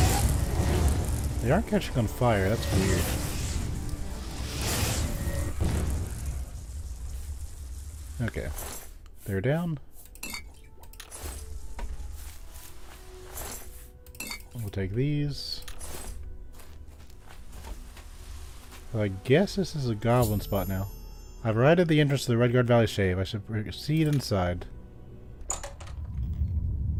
They aren't catching on fire, that's weird. Okay. They're down. We'll take these. I guess this is a goblin spot now. I've arrived at the entrance to the Redguard Valley Shave. I should proceed inside.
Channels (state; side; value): identical; both; correlation 1.00